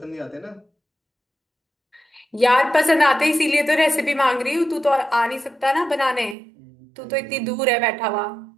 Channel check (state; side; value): drops out; left; at 6.4 s